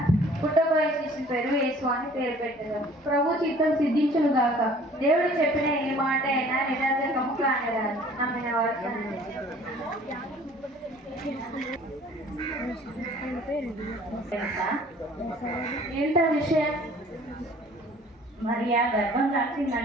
పుట్టబోయే శిశువు పేరు యేసు అని పేరు పెట్టగలరు. ప్రభు చిత్తం సిద్ధించును గాక. దేవుడు చెప్పిన ఏ మాట అయినా నిరర్ధకము కానరాదు, నమ్మిన వాడు. ఏంటా విషయం? మరియా గర్భం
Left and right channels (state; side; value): normal; both; correlation 0.52